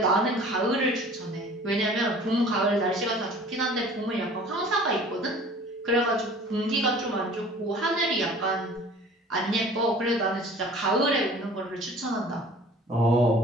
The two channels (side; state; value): both; normal; correlation 0.47